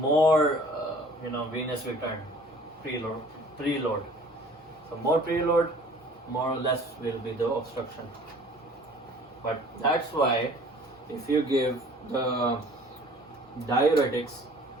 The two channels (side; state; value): both; normal; correlation 0.50